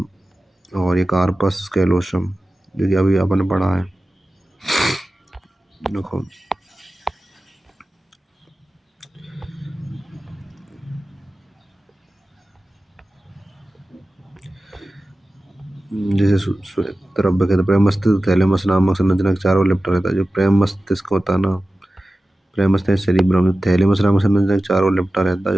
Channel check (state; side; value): normal; both; correlation 0.95